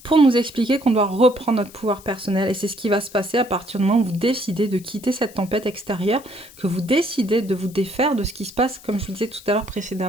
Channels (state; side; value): noise; left; hiss, 21 dB below the sound